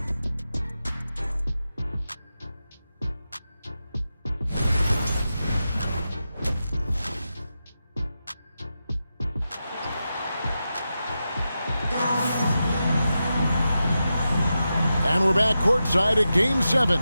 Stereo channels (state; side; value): inverted; both; correlation -0.90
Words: And we're back courtside at Game 7